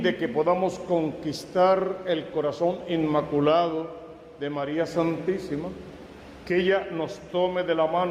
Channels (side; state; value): both; identical; correlation 1.00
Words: de que podamos conquistar el corazón inmaculado de María Santísima, que ella nos tome de la